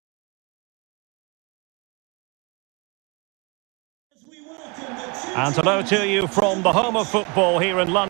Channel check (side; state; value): left; quieter; 30.1 dB